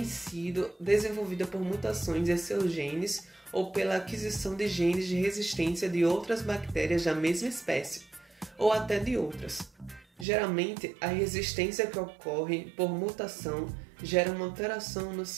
sido desenvolvida por mutações em seus genes ou pela aquisição de genes de resistência de outras bactérias da mesma espécie, ou até de outras. Geralmente, a resistência que ocorre por mutação gera uma alteração no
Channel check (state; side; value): drops out; left; at 10.2 s